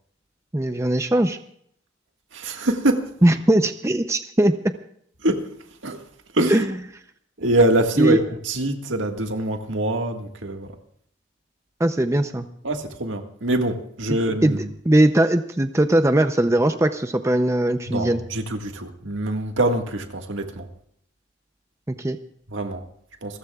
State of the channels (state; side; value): normal; both; correlation 0.63